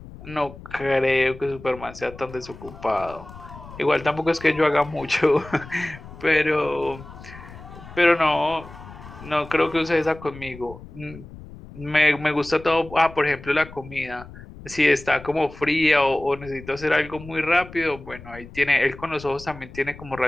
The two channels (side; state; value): left; noise; rumble, 17 dB below the sound